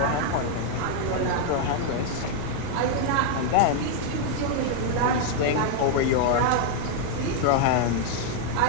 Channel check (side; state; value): both; different; correlation 0.00